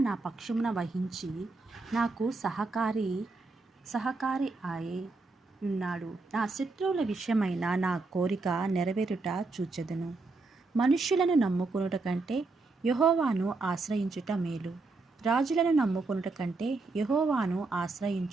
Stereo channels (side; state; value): left; quieter; 3.6 dB